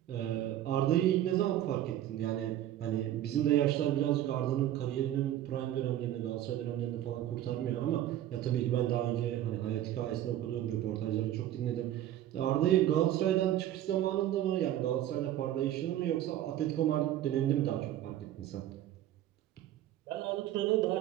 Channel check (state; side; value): quieter; left; 12.5 dB